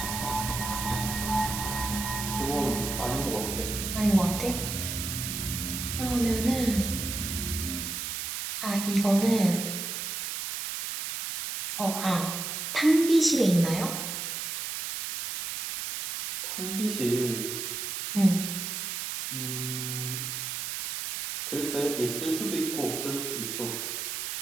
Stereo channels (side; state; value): right; noise; hiss, 4 dB below the sound